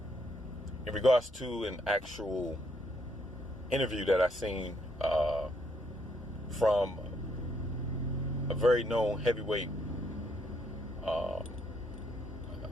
in regards to an actual interview that I seen from a very known heavyweight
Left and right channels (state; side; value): normal; both; correlation 0.72